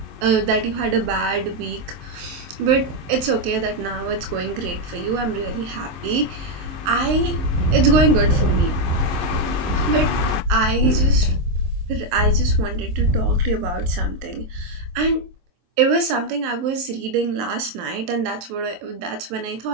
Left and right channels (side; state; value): left; late; 23 ms